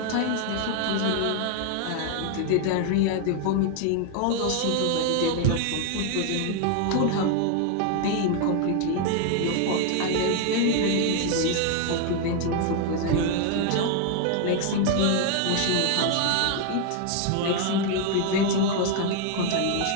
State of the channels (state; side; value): different; both; correlation 0.00